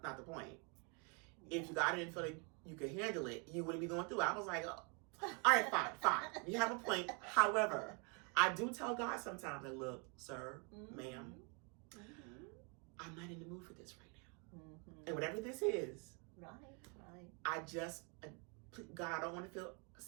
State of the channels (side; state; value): left; quieter; 34.9 dB